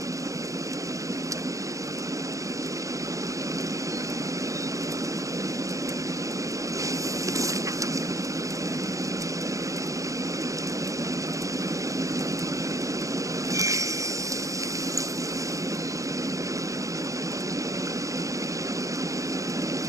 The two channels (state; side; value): late; left; 0.16 ms